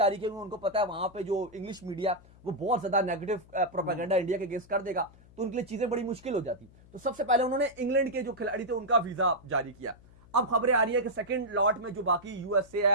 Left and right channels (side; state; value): left; noise; hum, 24 dB below the sound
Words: किए, उनको पता है वहां पे जो इंग्लिश मीडिया वो बहुत ज्यादा नेगेटिव प्रोपेगेंडा इंडिया के अगेंस्ट कर देगा, तो उनके लिए चीजें बड़ी मुश्किल हो जाती। तो सबसे पहले उन्होंने इंग्लैंड के जो खिलाड़ी थे उनका वीजा जारी किया। अब खबरें आ रही है कि सेकंड लॉट में जो बाकी यूएसए